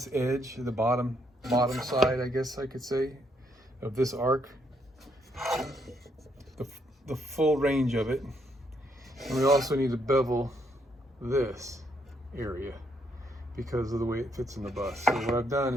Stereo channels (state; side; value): normal; both; correlation 0.73